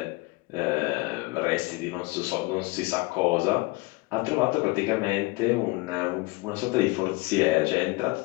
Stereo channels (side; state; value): right; quieter; 23.9 dB